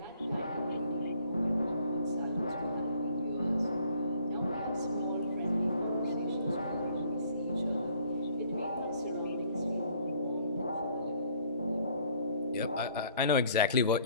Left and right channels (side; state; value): both; inverted; correlation -0.60